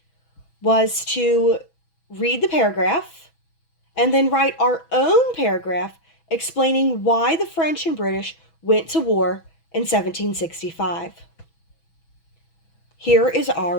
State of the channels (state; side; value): late; right; 6.1 ms